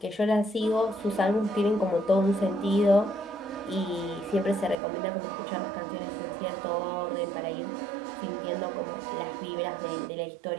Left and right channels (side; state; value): left; drops out; at 4.8 s